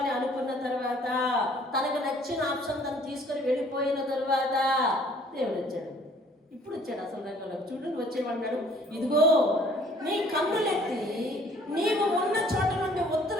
అనుకున్న తర్వాత, తనకు నచ్చిన నచ్చిన ఆప్షన్ తను తీసుకొని వెళ్ళిపోయిన తర్వాత దేవుడు వచ్చాడు. ఇప్పుడు వచ్చాడు అసలు రంగంలో. చూడు వచ్చేవాడు, ఇదిగో నీ కన్నులెత్తి నీవు ఉన్న చోట నుండి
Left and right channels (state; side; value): normal; both; correlation 0.57